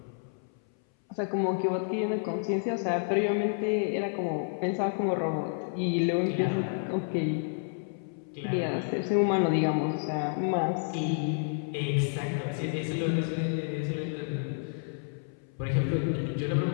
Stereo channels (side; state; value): right; silent; 58 dB below the other